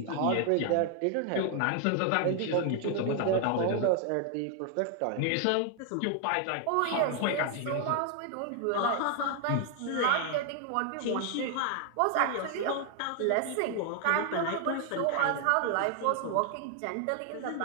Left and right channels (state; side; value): different; both; correlation 0.00